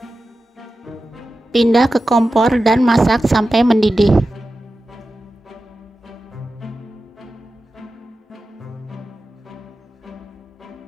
Pindah ke kompor dan masak sampai mendidih.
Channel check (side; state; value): both; normal; correlation 0.93